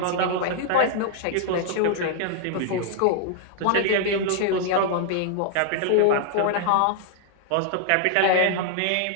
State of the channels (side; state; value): both; different; correlation 0.00